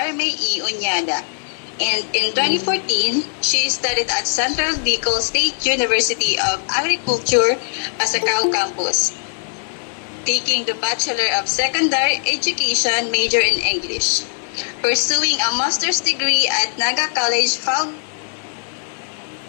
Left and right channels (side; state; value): right; silent; 66 dB below the other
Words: E. Unyada. And in 2014, she studied at Central Bicol State University of Agriculture, Pasacao campus, taking the Bachelor of Secondary Education major in English, pursuing a master's degree at Naga College Foundation